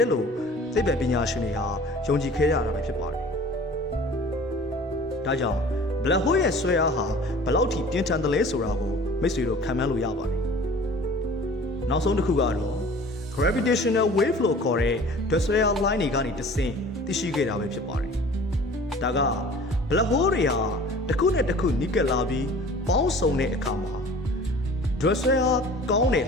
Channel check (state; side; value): normal; both; correlation 0.45